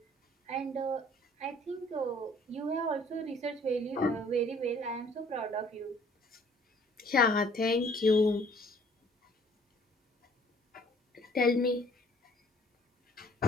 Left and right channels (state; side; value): normal; both; correlation 0.57